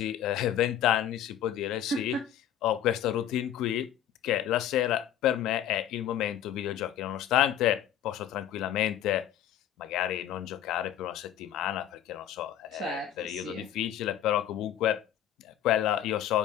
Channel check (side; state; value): right; quieter; 10.7 dB